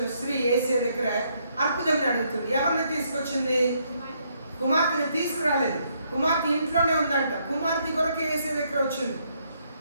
స్త్రీ యేసయ్య దగ్గర అద్భుతం అడుగుతుంది. ఎవరిని తీసుకొచ్చింది? కుమార్తెని తీసుకురాలేదు. కుమార్తె ఇంట్లోనే ఉందంట. కుమార్తె కొరకు యేసయ్య దగ్గర వచ్చింది.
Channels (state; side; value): inverted; both; correlation -0.73